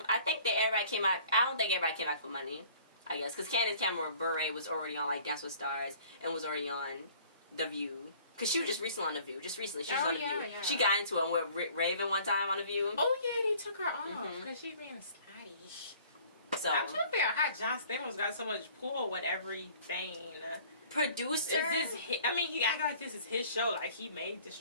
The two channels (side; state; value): both; inverted; correlation -0.52